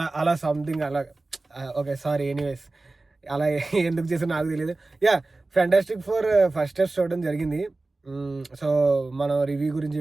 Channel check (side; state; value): left; quieter; 3.2 dB